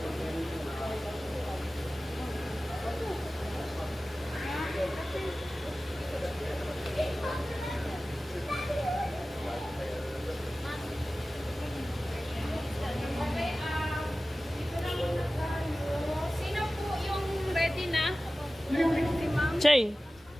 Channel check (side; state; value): both; normal; correlation 0.96